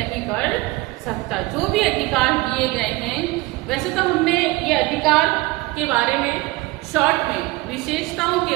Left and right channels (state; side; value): quieter; left; 21.3 dB